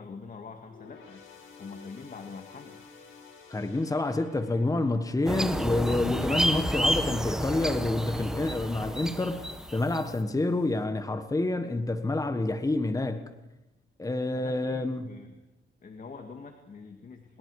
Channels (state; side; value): normal; both; correlation 0.86